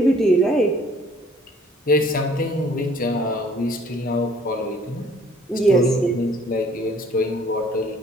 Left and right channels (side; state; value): both; normal; correlation 0.58